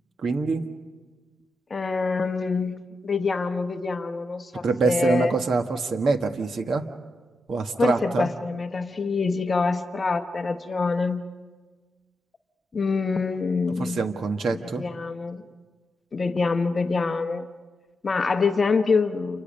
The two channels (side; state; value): both; normal; correlation 0.86